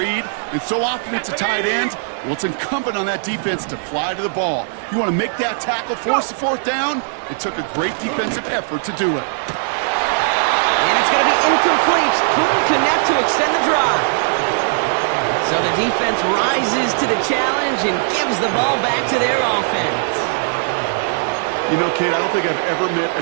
and so often it's a tight end, well, it's incumbent on that defense to fly to the ball. You want to make that tackle, force the 4th down? It took a great defensive effort to do it. And it's going to be incomplete. Couldn't connect to extend the drive. So the defense rises to the challenge and gives the ball back to their offense. You know, Kate, I don't think I've ever met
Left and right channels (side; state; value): left; silent; 67 dB below the other